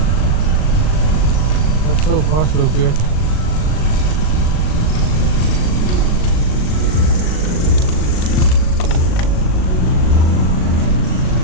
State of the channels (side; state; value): right; late; 38 ms